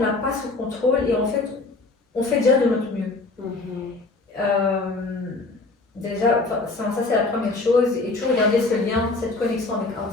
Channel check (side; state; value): right; quieter; 3.5 dB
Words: pas sous contrôle et en fait, on fait déjà de notre mieux. Déjà, ça c'est la première chose, et toujours garder ce lien, cette connexion avec Allah